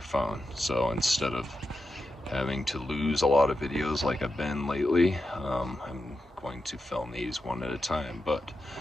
phone. So instead of having to lose a lot of videos like I've been lately, I'm going to film these one at a time. But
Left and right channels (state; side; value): normal; both; correlation 0.89